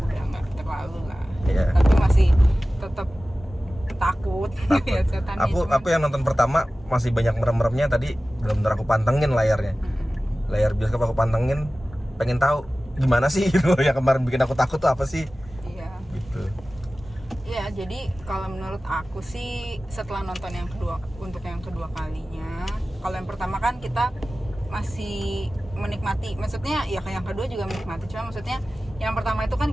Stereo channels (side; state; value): both; normal; correlation 0.96